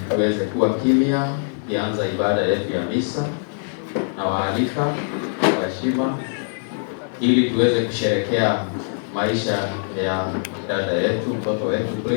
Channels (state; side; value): silent; right; digital silence